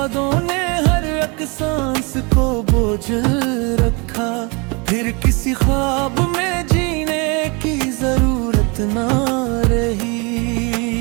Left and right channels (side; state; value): left; quieter; 30.1 dB